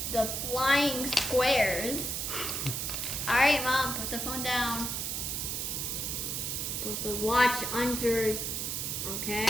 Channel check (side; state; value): right; noise; hiss, 2 dB below the sound